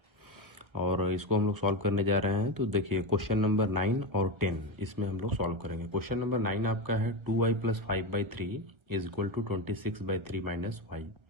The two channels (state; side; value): late; left; 1.5 ms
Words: और इसको हम लोग सॉल्व करने जा रहे हैं। तो देखिए क्वेश्चन नंबर 9 और 10 इसमें हम लोग सॉल्व करेंगे। क्वेश्चन नंबर 9 आपका है 2y + 5/3 is equal to 26/3 minus y.